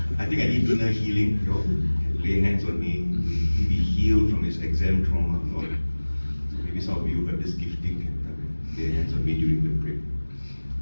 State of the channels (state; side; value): inverted; both; correlation -1.00